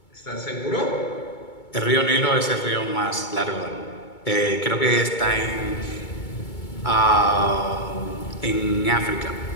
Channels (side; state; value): right; late; 2.2 ms